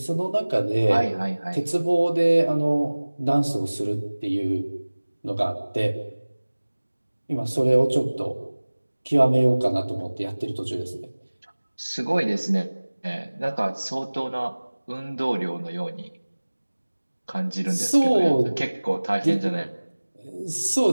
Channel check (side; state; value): both; inverted; correlation -1.00